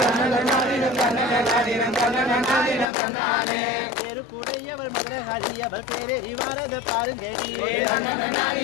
பேரு கூடையவள் மதுரகாளி அவள் பேரேறி வாரத பாருங்கடி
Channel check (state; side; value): drops out; right; at 2.9 s